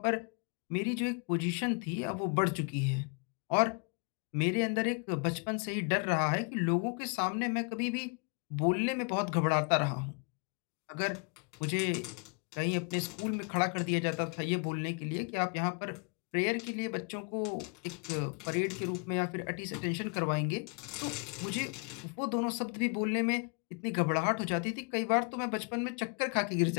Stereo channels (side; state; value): right; quieter; 36.6 dB